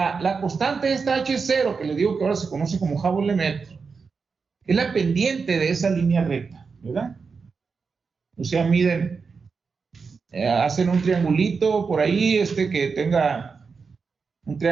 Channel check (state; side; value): quieter; left; 5.1 dB